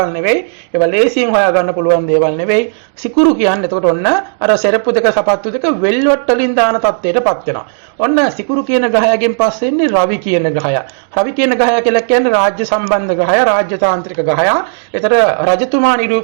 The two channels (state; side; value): silent; left; digital silence